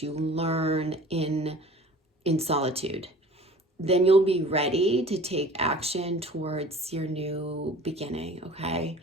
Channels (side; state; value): both; normal; correlation 0.45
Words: you learn in solitude. Then you'll be ready to take action towards your new beginning, okay?